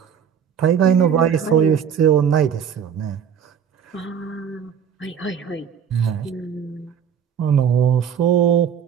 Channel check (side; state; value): left; quieter; 7.9 dB